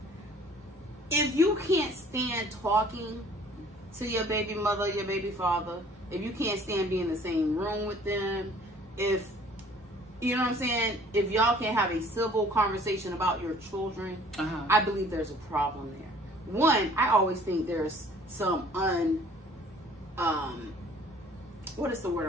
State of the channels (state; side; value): normal; both; correlation 0.54